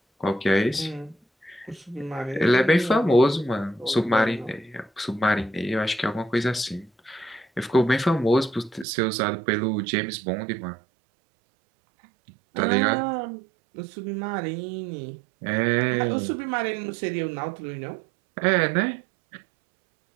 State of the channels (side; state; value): left; drops out; at 8.8 s